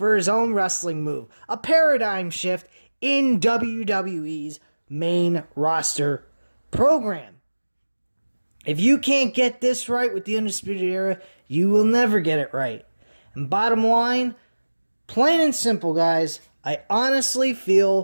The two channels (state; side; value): inverted; both; correlation -1.00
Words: his own wrestling move. A paradigm shift in WWE's main roster program. If you can't get this right with the Undisputed Era, you will never get it right. And bottom line, plain and simple, guys, I honestly